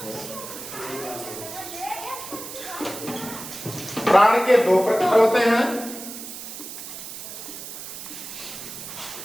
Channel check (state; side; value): noise; right; hiss, 10 dB below the sound